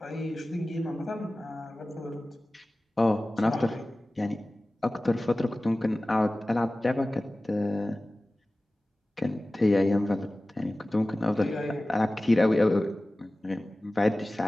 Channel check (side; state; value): both; normal; correlation 0.97